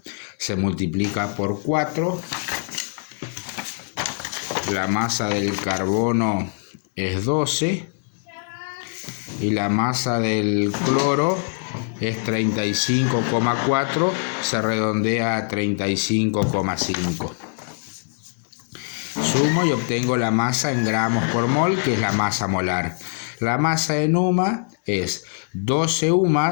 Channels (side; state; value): right; silent; 61 dB below the other